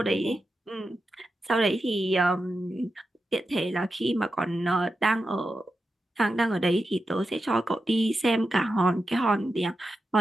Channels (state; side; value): normal; both; correlation 0.90